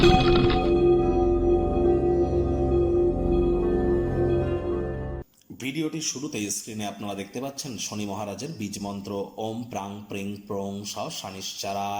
ভিডিওটির শুরুতেই স্ক্রিনে আপনারা দেখতে পাচ্ছেন শনি মহারাজের বীজ মন্ত্র ওম প্রাং প্রিং প্রং স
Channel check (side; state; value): both; identical; correlation 1.00